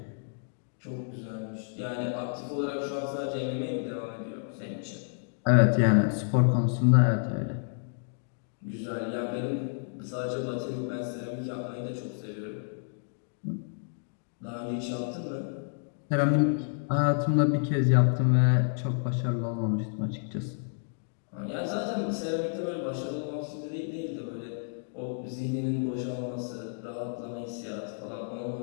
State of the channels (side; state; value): right; silent; digital silence